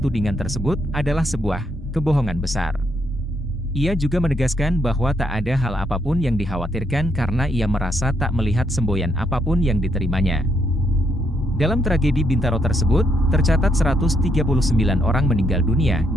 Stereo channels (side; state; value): both; normal; correlation 0.75